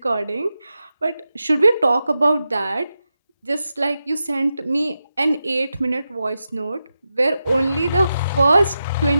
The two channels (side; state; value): both; inverted; correlation -0.89